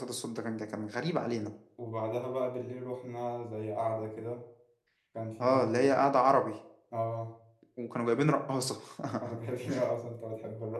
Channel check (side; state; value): both; identical; correlation 1.00